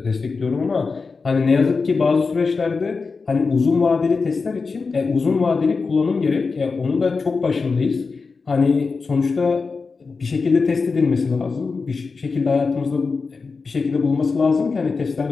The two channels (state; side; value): quieter; right; 4.5 dB